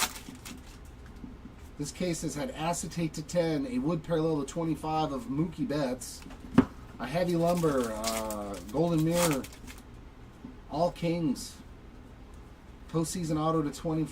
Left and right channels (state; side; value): identical; both; correlation 1.00